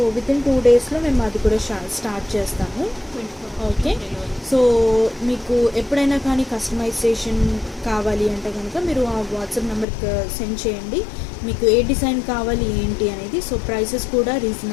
వితిన్ 2 డేస్లో మేము అది కూడా స్టార్ట్ చేస్తాము. ఓకే, సో మీకు ఎప్పుడైనా కానీ కస్టమైజేషన్ కావాలి అంటే కనుక మీరు ఆ వాట్సాప్ నెంబర్కి సెండ్ చేయండి. మీకు ఏ డిజైన్ కావాలి ఏంటి అనేది. సో ప్రైసెస్ కూడా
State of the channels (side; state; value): right; drops out; at 9.9 s